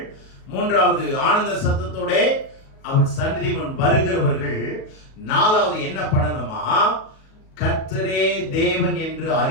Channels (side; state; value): right; late; 37 ms